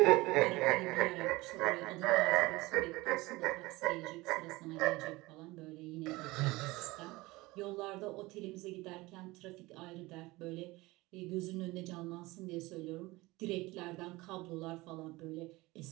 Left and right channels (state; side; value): quieter; left; 21.1 dB